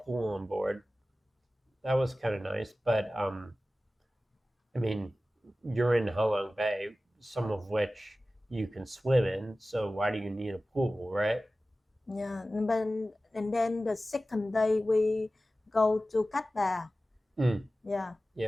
pool on board. That was kind of nice, but I mean, you're in Halong Bay, some of which you can swim in, so why do you need a pool, right? Yeah, and then the second day we go to Cat Ba. Mm, Yeah,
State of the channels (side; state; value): both; normal; correlation 0.96